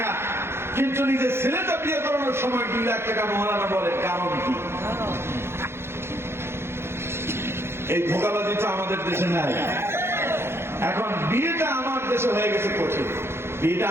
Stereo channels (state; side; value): late; left; 0.12 ms